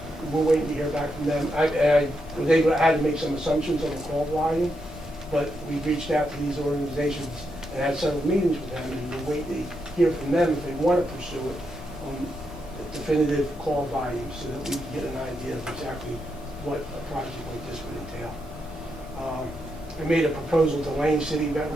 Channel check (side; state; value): both; normal; correlation 0.83